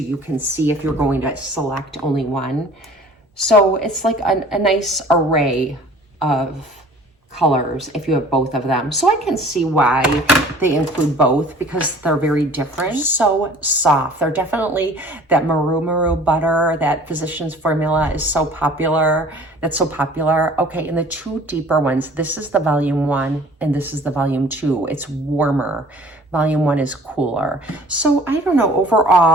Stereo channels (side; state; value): both; normal; correlation 0.49